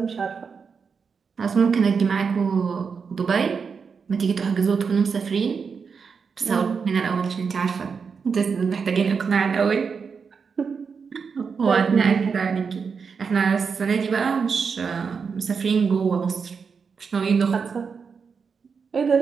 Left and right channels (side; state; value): left; quieter; 5.7 dB